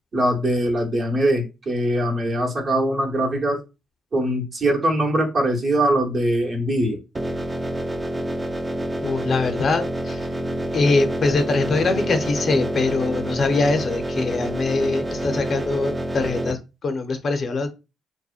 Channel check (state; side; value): normal; both; correlation 0.83